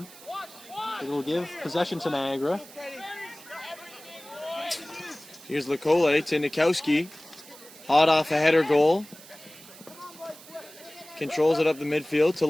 It'll give possession to Niagara. Here's Lekole to Nikowski. Hot off a header goal. Controls it up the midfield to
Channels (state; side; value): noise; right; hiss, 19 dB below the sound